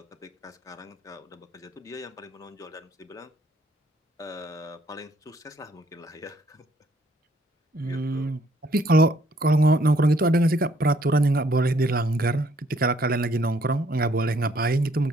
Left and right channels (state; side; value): normal; both; correlation 0.65